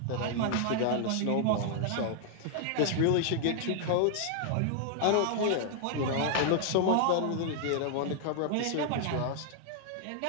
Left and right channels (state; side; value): different; both; correlation -0.01